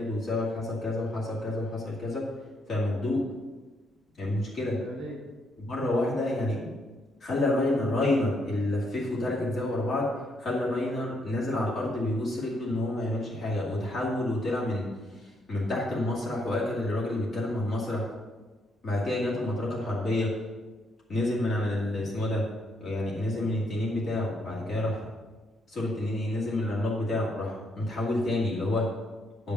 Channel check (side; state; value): both; normal; correlation 0.75